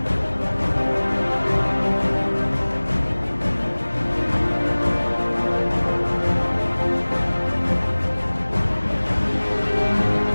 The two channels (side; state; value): both; inverted; correlation -1.00